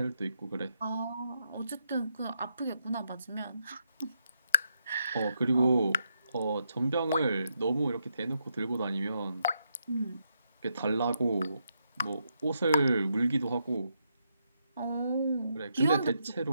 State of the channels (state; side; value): inverted; both; correlation -0.81